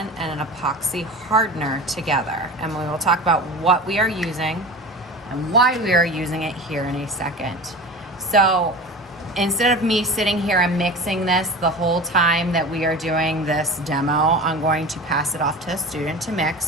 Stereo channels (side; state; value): both; normal; correlation 0.33